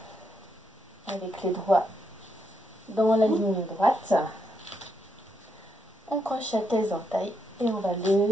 avec les doigts dans la ligne droite. On crochette les entailles et on va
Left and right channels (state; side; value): normal; both; correlation 0.79